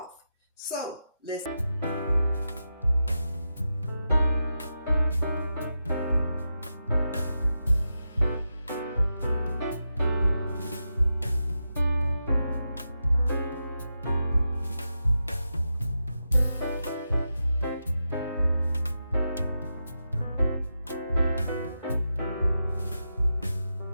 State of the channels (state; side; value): inverted; both; correlation -0.88